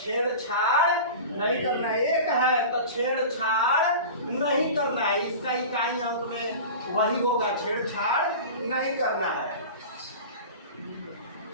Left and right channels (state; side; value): inverted; both; correlation -0.34